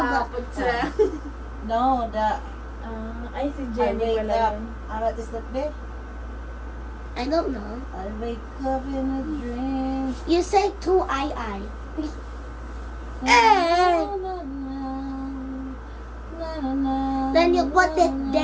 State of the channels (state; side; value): identical; both; correlation 1.00